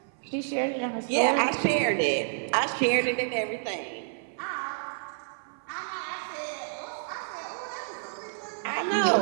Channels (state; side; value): silent; left; 57 dB below the other